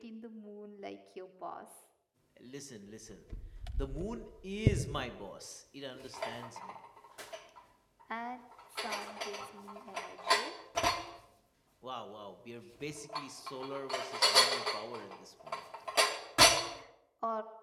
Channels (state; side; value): identical; both; correlation 1.00